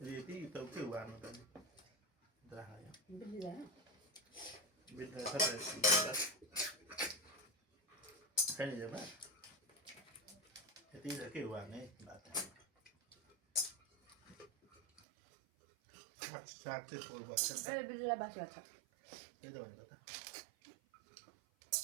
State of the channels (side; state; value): left; drops out; at 15.0 s